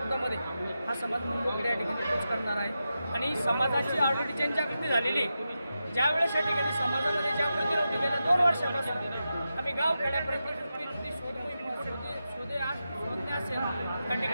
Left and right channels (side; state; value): both; inverted; correlation -0.90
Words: हा समाज मुंबईकडे या ठिकाणी पोच करणार आहे आणि समाजाची ऑलरेडी जनजागृती झालेली ज्यावेळेस या ठिकाणी समाजामध्ये जागृती नव्हती गेल्या 2 वर्षापासून आम्ही गाव खेड्यापर्यंत शोधणे असेल त्या